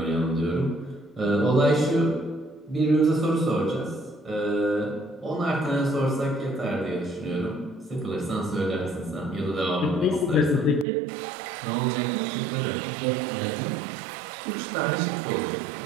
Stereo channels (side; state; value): left; drops out; at 10.9 s